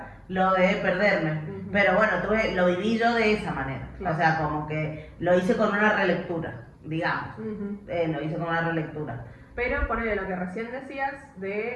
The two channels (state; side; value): identical; both; correlation 1.00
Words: lo de perderme. Pero bueno, lo viví yo de esa manera. Claro. O sea, como que lo hice con una relectura, digamos. Lo hice con una relectura. Pero ponele lo que recién decías